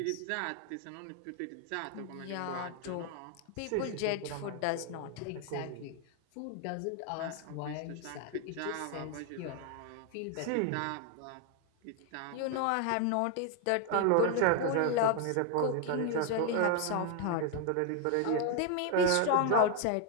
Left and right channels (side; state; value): both; different; correlation 0.01